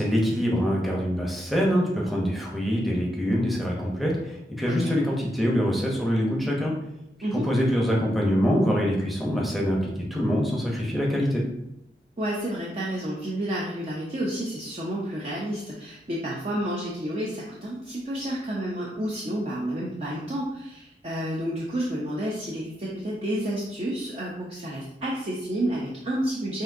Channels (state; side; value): normal; both; correlation 0.82